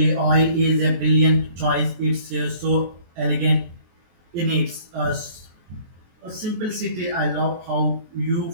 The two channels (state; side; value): late; left; 23 ms